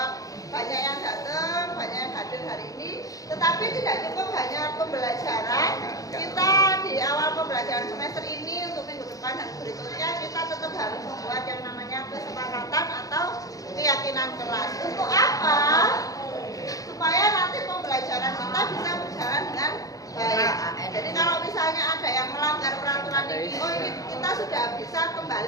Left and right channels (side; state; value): right; late; 0.17 ms